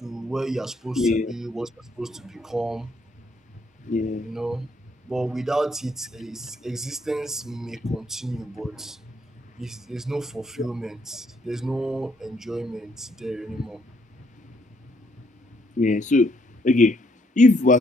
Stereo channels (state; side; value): normal; both; correlation 0.71